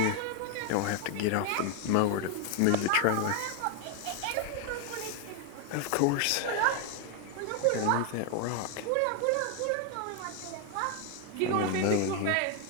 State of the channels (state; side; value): different; both; correlation 0.00